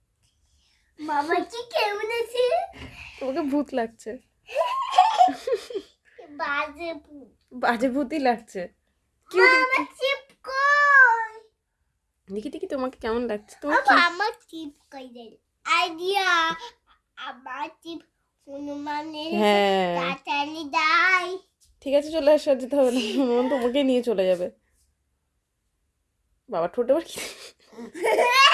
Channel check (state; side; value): identical; both; correlation 1.00